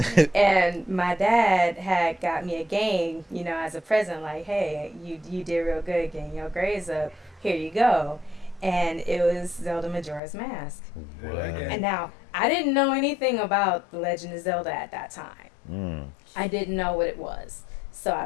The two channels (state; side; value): drops out; right; at 10.2 s